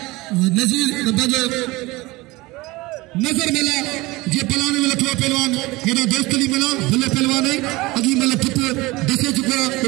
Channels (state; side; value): quieter; left; 21.5 dB